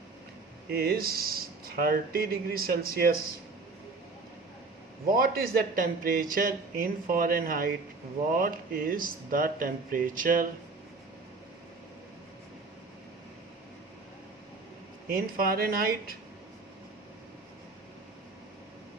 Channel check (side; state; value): left; quieter; 3.9 dB